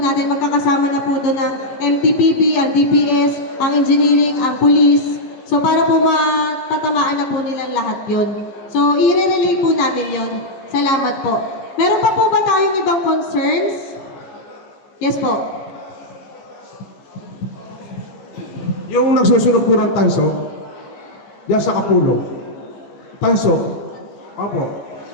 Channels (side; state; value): right; late; 15 ms